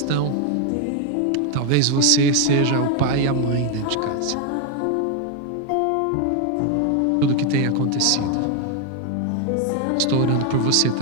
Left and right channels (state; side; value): different; both; correlation 0.01